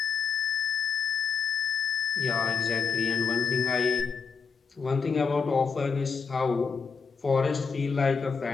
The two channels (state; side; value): quieter; right; 5.7 dB